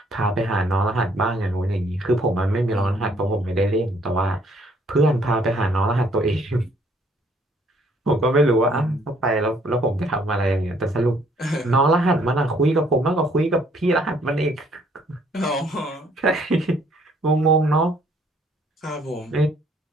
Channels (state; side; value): normal; both; correlation 0.64